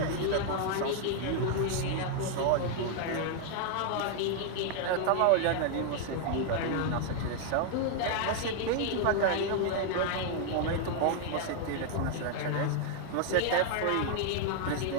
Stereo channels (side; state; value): both; different; correlation 0.00